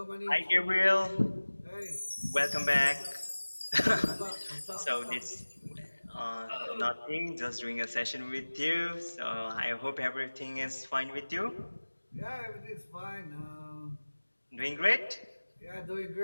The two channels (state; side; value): inverted; both; correlation -1.00